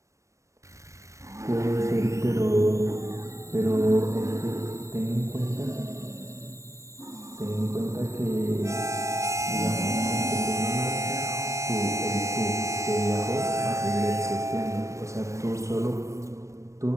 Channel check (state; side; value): late; left; 0.15 ms